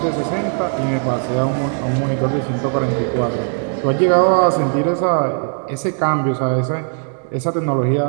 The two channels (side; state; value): left; silent; 59 dB below the other